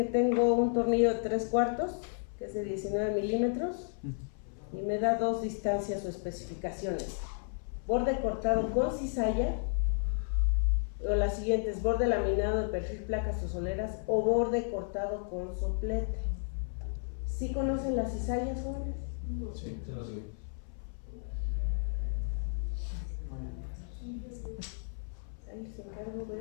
tengo un tornillo de 3/4, que es de 19 milímetros, y me da dos distancias o especificaciones. Borde cortado con cizalla, o las siguientes, borde laminado de perfil, placas o soleras, o borde cortado con soplete. ¿Sí conocen las cizallas, jóvenes? Sí, se lo sé. Ahí les encargo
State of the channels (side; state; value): right; silent; 56 dB below the other